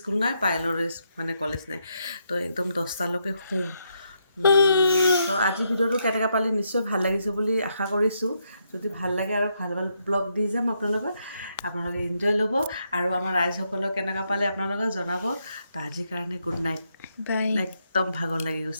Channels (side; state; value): both; inverted; correlation -0.79